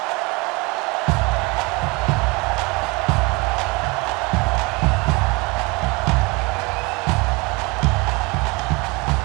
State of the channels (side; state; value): left; quieter; 26.7 dB